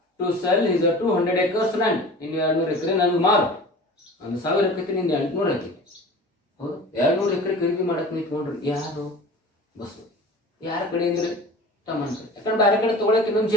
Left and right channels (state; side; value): normal; both; correlation 0.39